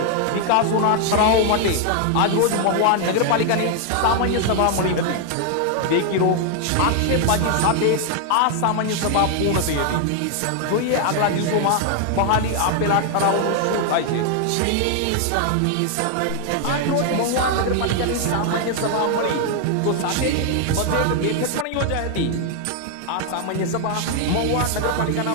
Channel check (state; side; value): different; both; correlation 0.00